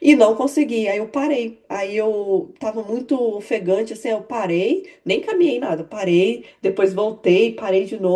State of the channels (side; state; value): both; identical; correlation 1.00